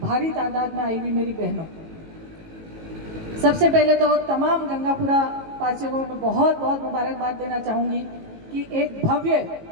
भारी तादाद में आई हुई मेरी बहनों, सबसे पहले तो तमाम गंगापुरा वासियों को मैं बहुत बहुत मुबारकबाद देना चाहूंगी कि एक भव्य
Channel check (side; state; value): left; late; 18 ms